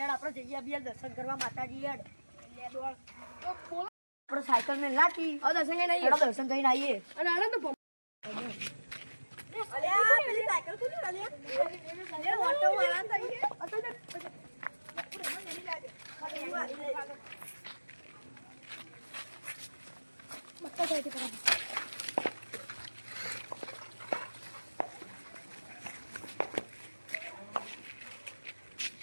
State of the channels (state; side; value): inverted; both; correlation -1.00